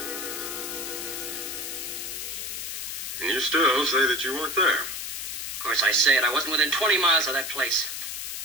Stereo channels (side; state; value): left; noise; hiss, 5 dB below the sound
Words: And you still say that you weren't there. Of course I say it. I wasn't within 20 miles of that place.